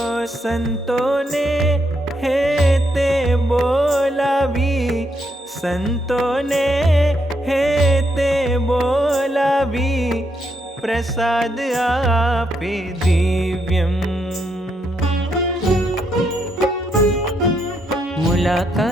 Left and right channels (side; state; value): both; normal; correlation 0.78